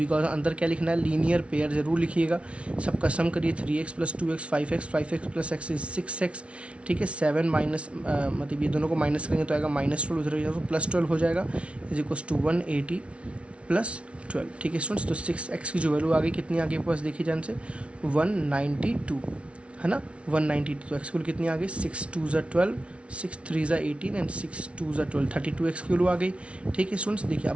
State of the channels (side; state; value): left; late; 0.061 ms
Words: अंदर क्या लिखना है, लीनियर पेयर जरूर लिखिएगा। सबका सम करिए 3x + 2x 5x 5x + x is 6x, ठीक है। 7 माइनस मतलब ये दोनों को माइनस करेंगे तो आएगा -12, उधर जाएगा तो +12 हो जाएगा, इज इक्वल टू 180 + 12, ठीक है स्टूडेंट्स। तो 6x की जो वैल्यू आ गई कितनी आ गई आपके पास, देखिए जान से 192 है ना, 192। तो एक्स की वैल्यू कितनी आ गई, 6 2 = 12, 6 3 = 18 एंड 6 2 = 12, 32x की वैल्यू आ गई, ठीक है स्टूडेंट्स। देखिए